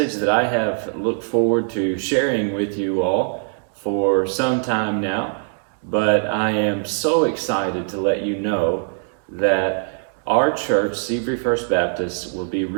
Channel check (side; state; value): left; silent; digital silence